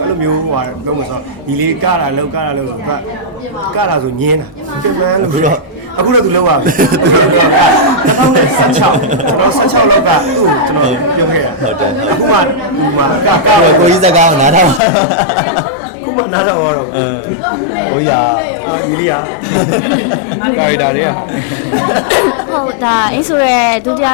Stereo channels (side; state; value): right; drops out; at 14.8 s